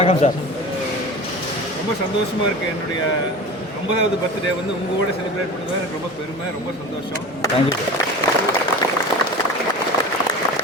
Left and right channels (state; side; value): normal; both; correlation 0.33